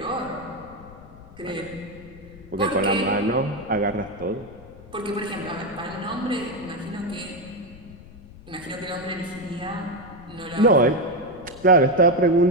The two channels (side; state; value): left; noise; rumble, 19 dB below the sound